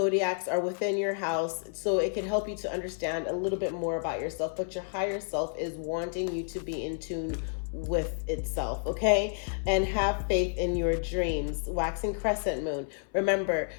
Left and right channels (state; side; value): silent; right; 58 dB below the other